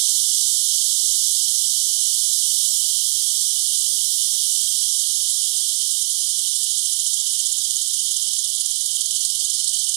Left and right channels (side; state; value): left; silent; digital silence